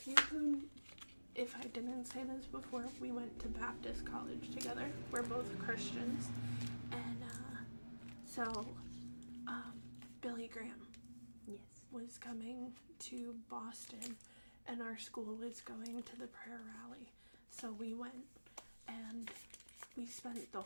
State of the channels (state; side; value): inverted; both; correlation -1.00